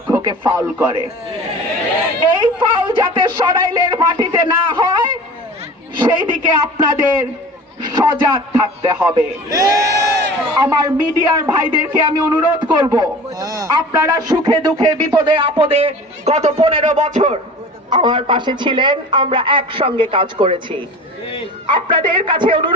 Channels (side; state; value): both; normal; correlation 0.39